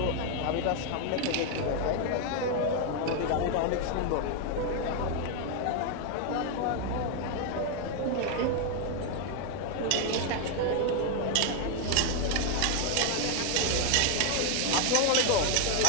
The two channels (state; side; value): different; both; correlation 0.01